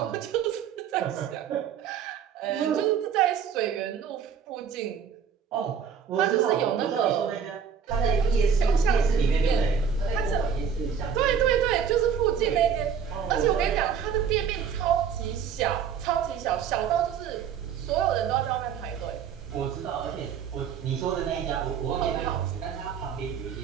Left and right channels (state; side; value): quieter; left; 7.3 dB